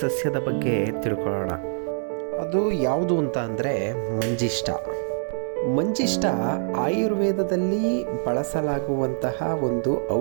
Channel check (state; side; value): silent; left; digital silence